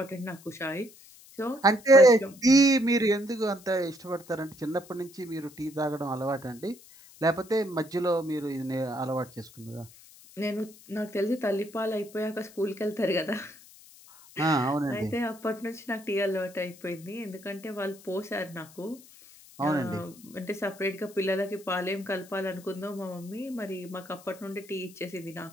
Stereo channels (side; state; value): left; noise; hiss, 22 dB below the sound